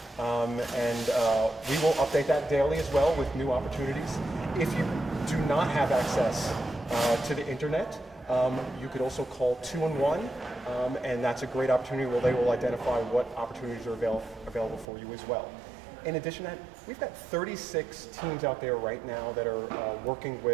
We will update that daily as well with new opportunities. If you do not have access to the internet, you could also call 211, and that's a great opportunity where they will identify what opportunities are available for you as well. In addition to that, we've got 36 teams out there right now that are working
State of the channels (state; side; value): drops out; left; at 14.9 s